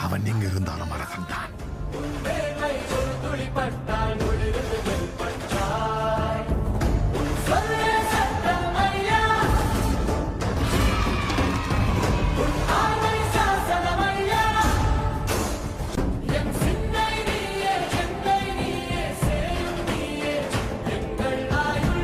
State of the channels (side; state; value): both; identical; correlation 1.00